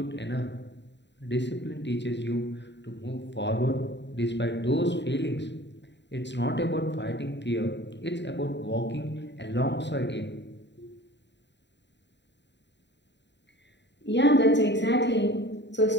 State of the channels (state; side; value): late; right; 0.52 ms